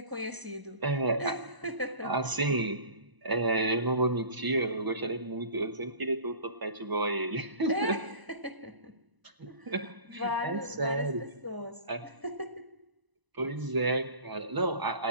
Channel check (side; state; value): left; late; 1.0 ms